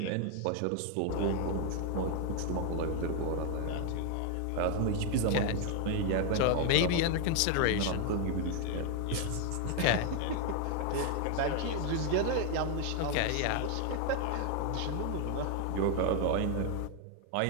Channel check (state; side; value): different; both; correlation 0.01